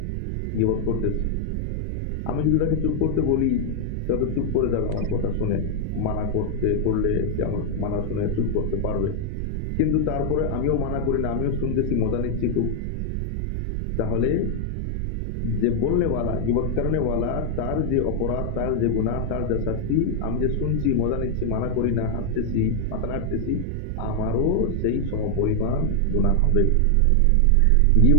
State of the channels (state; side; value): different; both; correlation 0.00